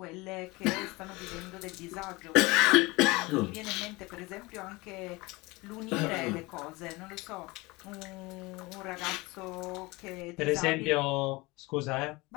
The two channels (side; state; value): right; quieter; 23.2 dB